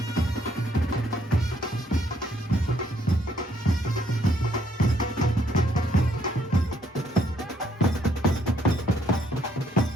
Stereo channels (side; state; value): both; normal; correlation 0.69